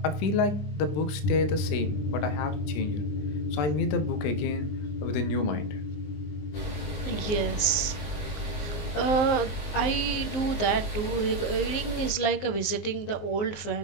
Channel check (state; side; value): late; right; 19 ms